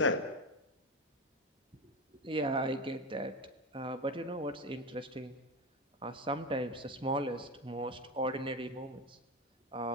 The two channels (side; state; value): both; normal; correlation 0.18